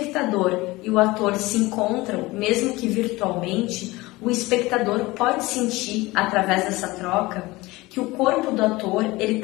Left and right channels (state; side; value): quieter; right; 20.8 dB